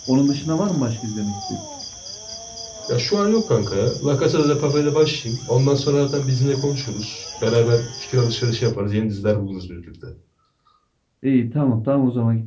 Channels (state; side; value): identical; both; correlation 1.00